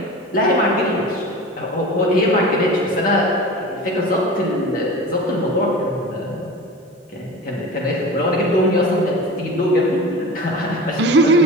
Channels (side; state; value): both; normal; correlation 0.33